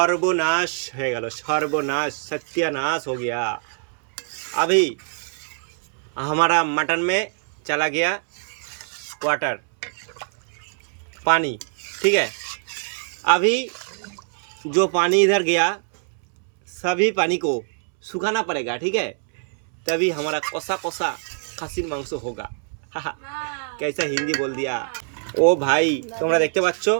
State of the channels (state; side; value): silent; left; 63 dB below the other